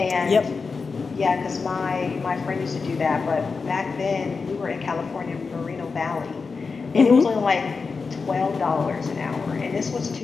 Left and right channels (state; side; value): quieter; right; 4.7 dB